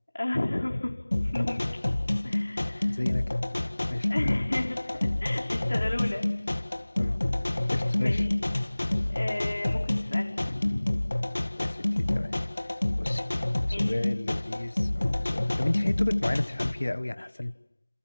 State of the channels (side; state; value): both; inverted; correlation -1.00